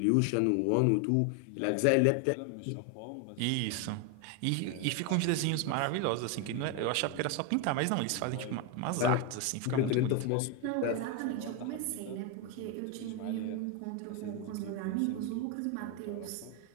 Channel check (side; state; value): both; different; correlation 0.01